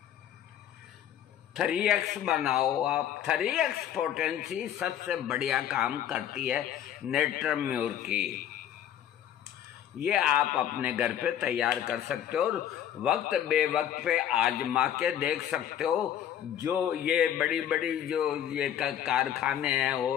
3X बनाओ आप। 3X पोटेंसी सबसे बढ़िया काम करती है नेट्रम म्यूर की। ये आप अपने घर पे तैयार कर सकते हो और वक्त बेवक्त पे आजमा के देख सकते हो। जो ये बड़ी बड़ी जो ये कारखाने हैं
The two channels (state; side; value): quieter; right; 10.4 dB